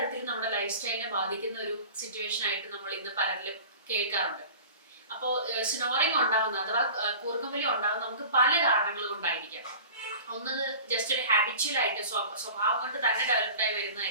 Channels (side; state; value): both; inverted; correlation -0.38